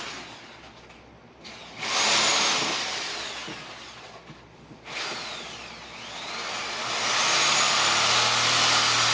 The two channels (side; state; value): both; identical; correlation 1.00